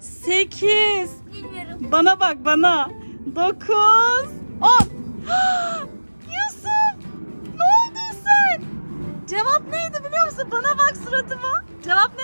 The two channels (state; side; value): inverted; both; correlation -1.00